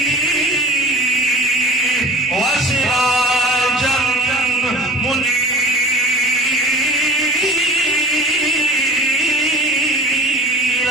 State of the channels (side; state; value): both; normal; correlation 0.40